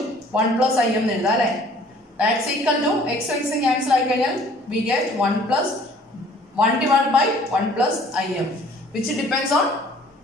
1 പ്ലസ് ഐ എന്ന് എഴുതാം അല്ലേ? That's equal to x x cancel ആയി കഴിഞ്ഞാൽ we get 1 divide by 1 plus I M which depends on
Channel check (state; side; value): normal; both; correlation 0.55